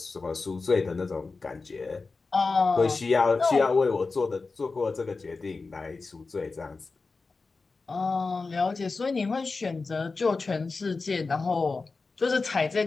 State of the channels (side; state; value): right; quieter; 4.1 dB